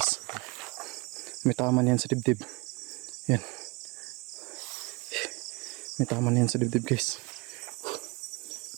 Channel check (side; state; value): left; quieter; 26.4 dB